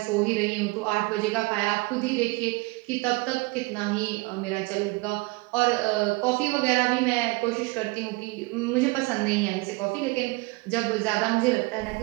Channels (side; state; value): left; quieter; 25.8 dB